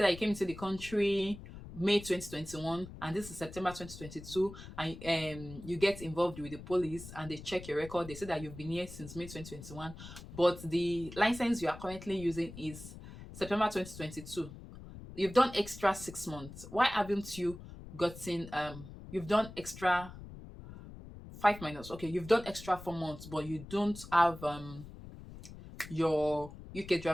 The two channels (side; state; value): left; noise; rumble, 14 dB below the sound